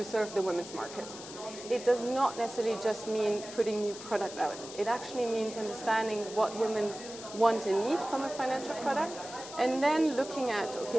serve the women's market. It does not necessarily just mean putting new product out. It actually means understanding what women want and need from a financial product, and then looking at, okay,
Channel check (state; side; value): noise; left; hiss, 13 dB below the sound